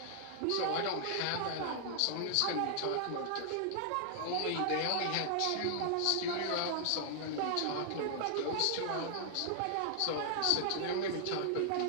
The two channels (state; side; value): different; both; correlation -0.01